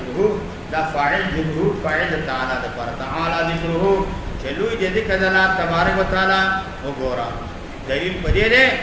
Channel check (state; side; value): identical; both; correlation 1.00